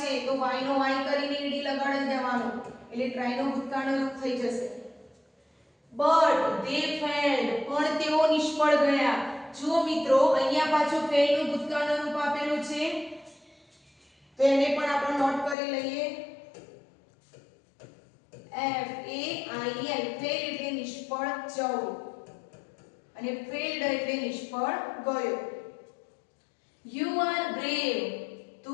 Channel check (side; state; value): right; drops out; at 15.6 s